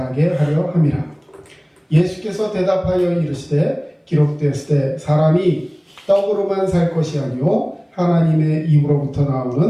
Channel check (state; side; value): identical; both; correlation 1.00